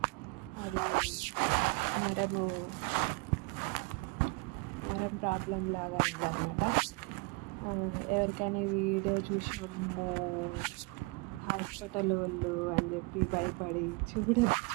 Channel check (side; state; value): left; quieter; 29.5 dB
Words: అది నరం ప్రాబ్లం లాగా అయిందనమాట. ఎవరికైనా ఈ వీడియో చూసి అమ్మో హాస్పిటల్ వాళ్ళు అని చెప్పి భయపడి